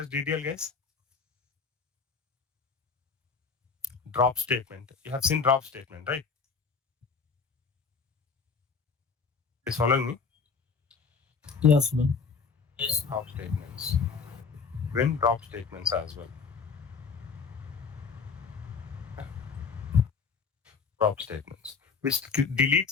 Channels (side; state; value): right; quieter; 5.3 dB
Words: as DDL, guys. Drop statement. You have seen drop statement, right? Is following me? Yes, man. Yes. Drop statements. When drop statements as well. Drop statements, which